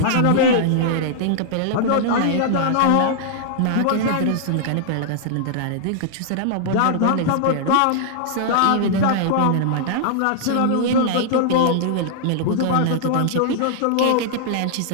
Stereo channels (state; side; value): different; both; correlation -0.01